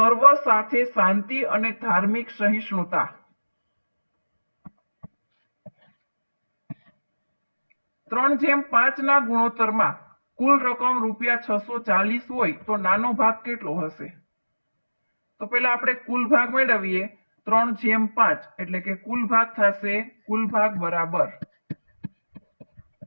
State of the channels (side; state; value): both; inverted; correlation -1.00